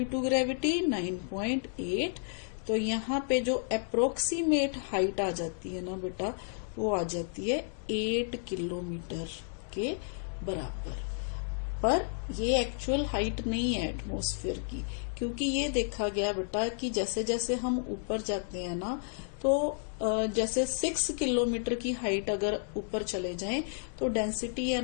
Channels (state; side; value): silent; right; 57 dB below the other